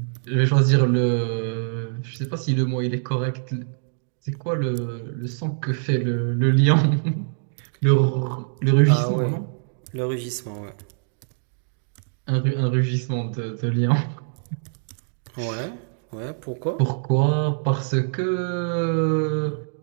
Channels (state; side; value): silent; left; digital silence